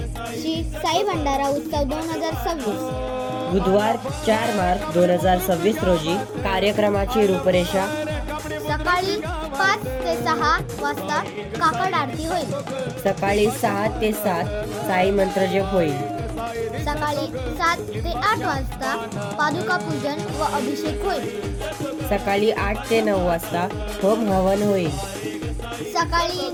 श्री साई भंडारा उत्सव 2026 बुधवार 4 मार्च 2026 रोजी कार्यक्रमाची रूपरेषा. सकाळी 5 ते 6 वाजता काकड आरती होईल. सकाळी 6 ते 7 साई मंत्रजप होईल. सकाळी 7 ते 8 वाजता पादुका पूजन व अभिषेक होईल. सकाळी 8 ते 9 वाजता होम हवन होईल. सकाळी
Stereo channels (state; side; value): identical; both; correlation 1.00